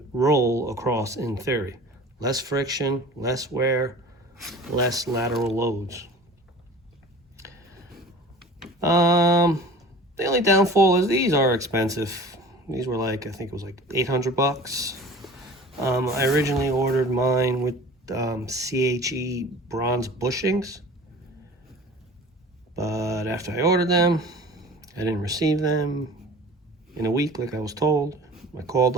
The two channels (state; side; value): normal; both; correlation 0.41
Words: roll across in theory. Less friction, less wear, less lateral loads. The only downfall is these are expensive. These were like, I think it was like 800 bucks. I originally ordered mine with CHE bronze bushings, but after I ordered them, I didn't receive them in a week like I was told. I called